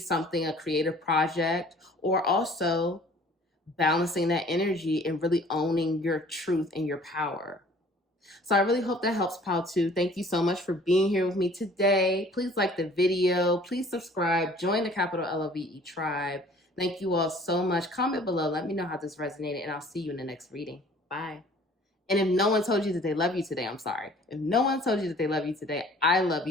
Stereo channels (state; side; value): normal; both; correlation 0.52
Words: a creative project, or also balancing that energy and really owning your truth and your power. So I really hope that helps, Pal 2. Thank you so much for being here with me today. Please like the video. Please subscribe. Join the capital LOVE tribe. Thank you all so much. Comment below. Let me know how this resonated, and I'll see you in the next reading. Bye. And if no one told you that they love you today, I'm sorry. If no one told you that they love you today, I love